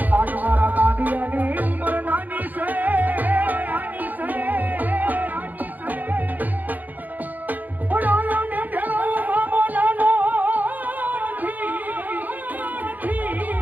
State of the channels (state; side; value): late; left; 0.083 ms